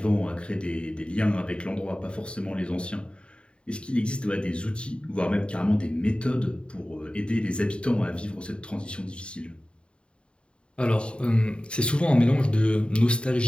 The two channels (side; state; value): right; late; 0.054 ms